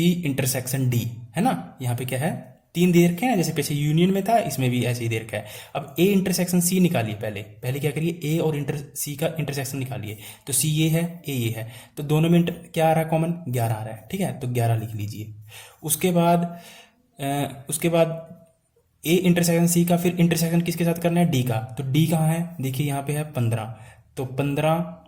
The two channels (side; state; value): both; identical; correlation 1.00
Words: intersection D, है ना। यहाँ पे क्या है, 3 दे रखे हैं, जैसे पीछे यूनियन में था, इसमें भी ऐसे ही दे रखा है। अब ए इंटरसेक्शन सी निकालिए, पहले क्या करिए, ए और सी का इंटरसेक्शन निकालिए। तो सी ये है, ए ये है, तो दोनों में क्या आ रहा है कॉमन, 11 आ रहा है, ठीक है, तो 11 लिख लीजिए। उसके बाद ए इंटरसेक्शन सी का फिर इंटरसेक्शन किसके साथ करना है, डी का। तो डी कहाँ है, देखिए यहाँ पे है 15, तो 15